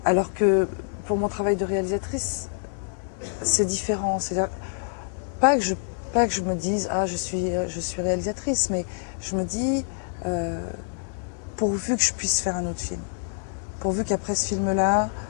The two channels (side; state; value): right; silent; 60 dB below the other